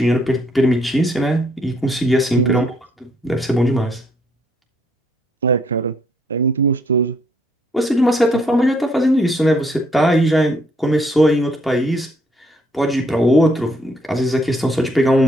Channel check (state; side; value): normal; both; correlation 0.69